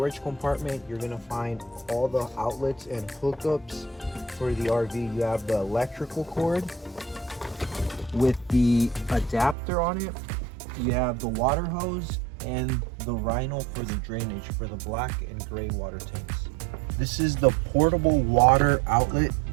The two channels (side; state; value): left; drops out; at 9.6 s